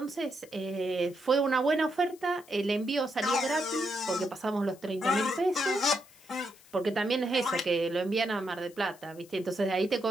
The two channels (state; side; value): noise; left; hiss, 25 dB below the sound